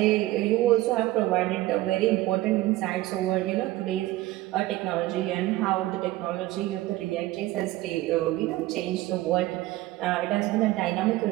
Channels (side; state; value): left; quieter; 17.2 dB